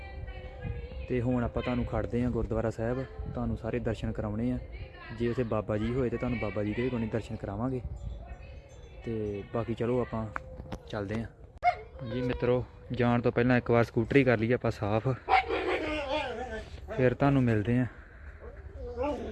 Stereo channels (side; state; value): both; identical; correlation 1.00